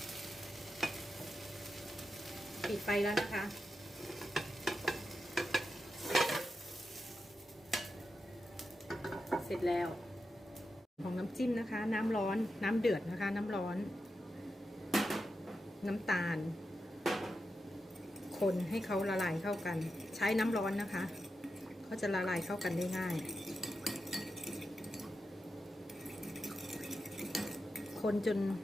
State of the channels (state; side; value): normal; both; correlation 0.89